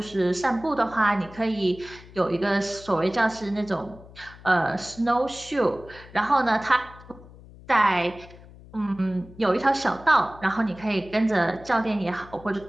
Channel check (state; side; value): noise; left; hum, 20 dB below the sound